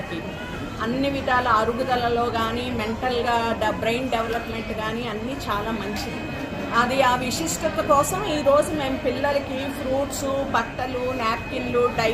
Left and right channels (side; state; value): both; identical; correlation 1.00